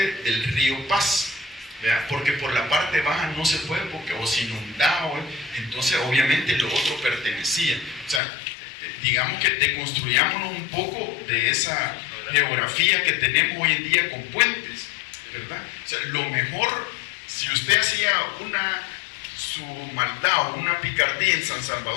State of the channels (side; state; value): right; drops out; at 8.2 s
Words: del río Paz, ¿verdad? Porque por la parte baja no se puede, porque o se inundaba, entonces obviamente lo otro pertenecía. O sea, digamos que deconstruyámonos un poco de esa geografía que tenemos hoy en día con puentes, ¿verdad? O sea, lo mejor, si usted hacía su maldad o una picardía en San